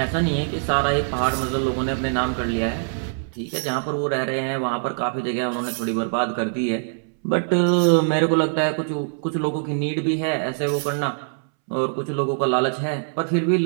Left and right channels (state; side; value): silent; left; 63 dB below the other